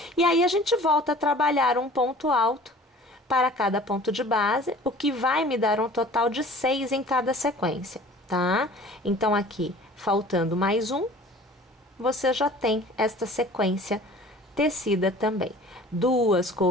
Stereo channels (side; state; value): both; normal; correlation 0.47